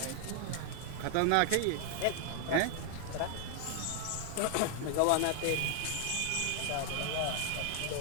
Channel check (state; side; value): different; both; correlation 0.00